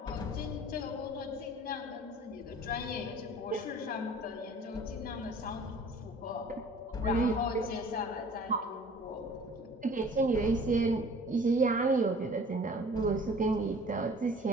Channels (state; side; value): normal; both; correlation 0.49